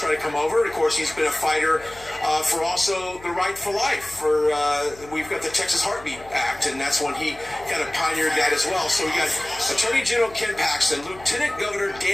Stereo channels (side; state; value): left; noise; hum, 21 dB below the sound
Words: try to come over. And of course, he's been a fighter for also the right for life. We've got the Texas Heartbeat Act, and that's when he kind of pioneered that as well. So we got Attorney General Ken Paxton. Lieutenant Governor